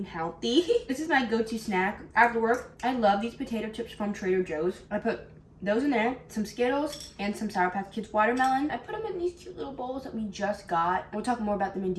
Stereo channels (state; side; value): identical; both; correlation 1.00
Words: healthy. This is my go-to snack after work. I love these potato chips from Trader Joe's. I put those in there, some Skittles, and some Sour Patch Kids watermelon. I put them in these cute little bowls that we just got. We'll talk more about them in